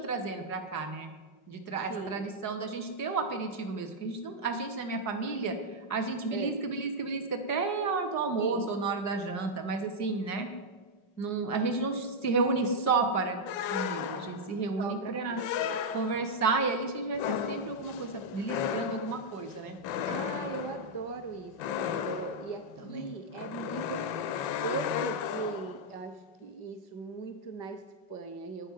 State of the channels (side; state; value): right; late; 4.8 ms